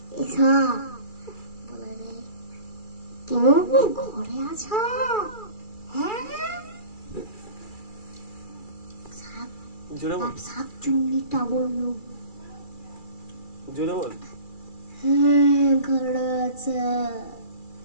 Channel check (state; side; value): late; right; 2.4 ms